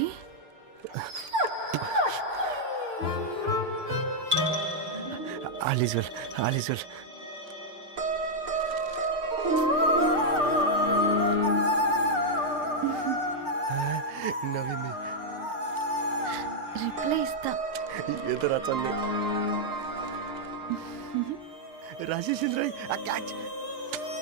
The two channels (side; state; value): left; late; 6.6 ms